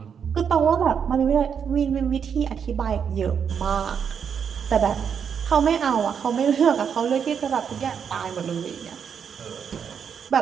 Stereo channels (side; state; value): left; quieter; 7.3 dB